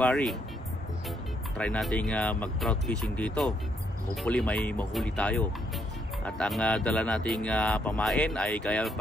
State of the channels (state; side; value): normal; both; correlation 0.74